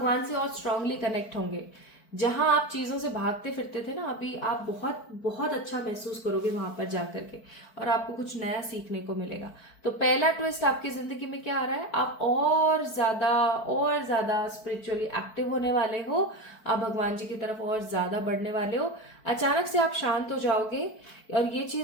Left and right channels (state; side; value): late; right; 4.5 ms